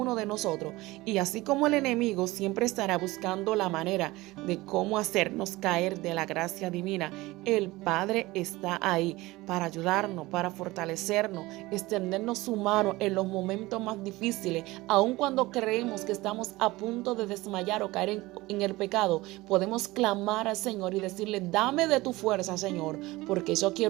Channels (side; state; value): left; quieter; 20.0 dB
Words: de nosotros y así como el enemigo siempre estará buscando la manera de cómo hacernos caer de la gracia divina, el Padre está ahí para ayudarnos, para fortalecernos, extendernos su mano en los momentos más difíciles. Aun cuando creemos que estamos a punto de desmayar o caer en el pecado, podemos clamar al Señor y decirle: dame de tu fuerza, Señor, porque yo